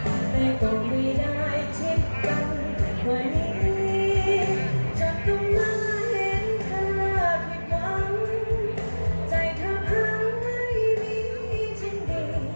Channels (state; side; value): inverted; both; correlation -1.00